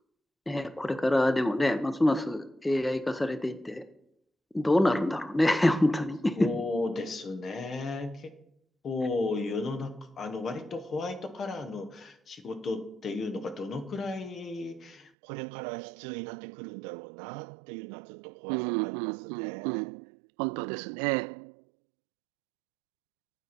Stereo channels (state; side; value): drops out; left; at 15.1 s